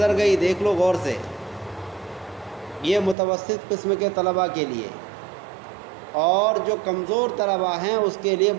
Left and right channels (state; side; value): drops out; left; at 3.2 s